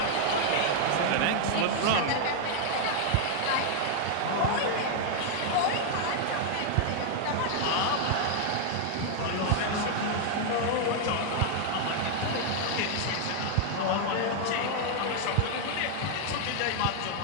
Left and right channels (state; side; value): different; both; correlation 0.00